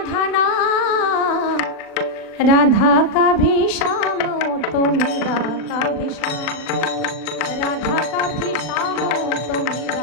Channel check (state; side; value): late; right; 39 ms